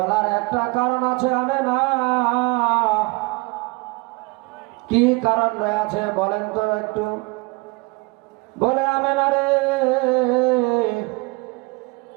একটা কারণ আছে আমেনা। কি কারণ রয়েছে বলেন তো একটু? বলে, আমেনা রে,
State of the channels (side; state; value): left; quieter; 26.7 dB